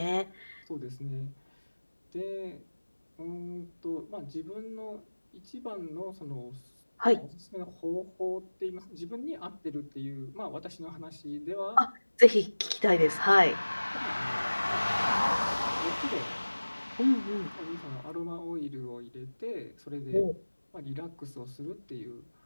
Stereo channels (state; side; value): inverted; both; correlation -1.00